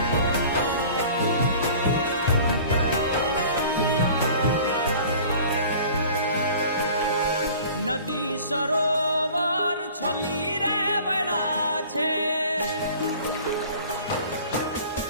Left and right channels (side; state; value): both; inverted; correlation -0.45